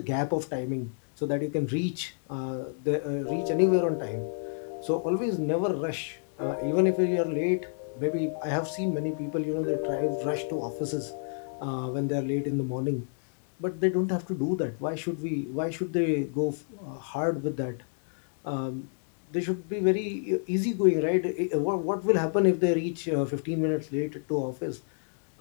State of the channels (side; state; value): right; silent; digital silence